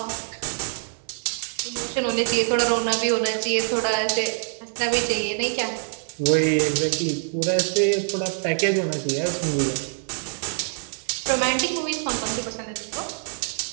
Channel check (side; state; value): left; silent; digital silence